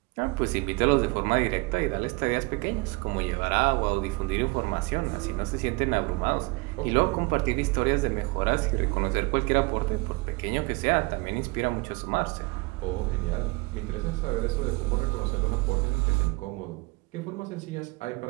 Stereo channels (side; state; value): left; quieter; 26.2 dB